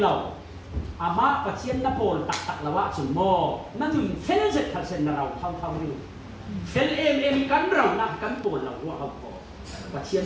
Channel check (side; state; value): both; identical; correlation 1.00